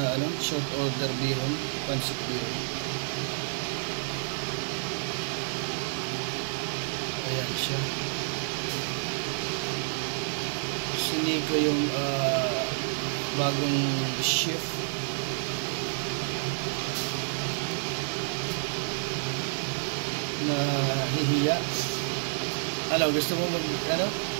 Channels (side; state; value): left; silent; digital silence